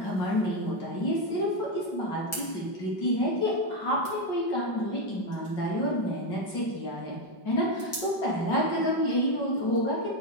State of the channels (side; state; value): right; late; 5.3 ms